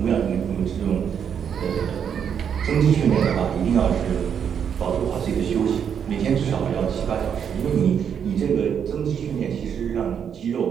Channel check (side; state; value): left; quieter; 7.9 dB